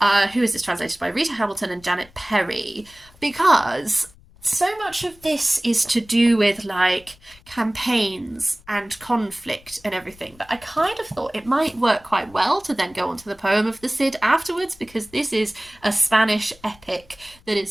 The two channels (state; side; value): noise; left; rumble, 26 dB below the sound